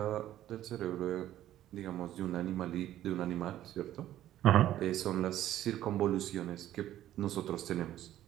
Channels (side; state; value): left; quieter; 12.9 dB